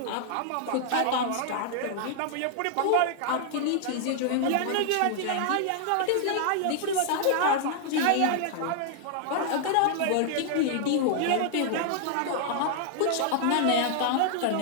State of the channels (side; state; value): both; different; correlation -0.01